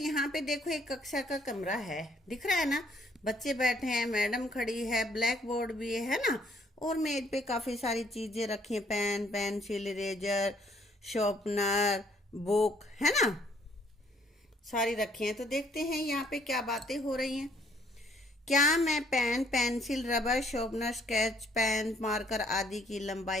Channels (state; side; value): normal; both; correlation 0.65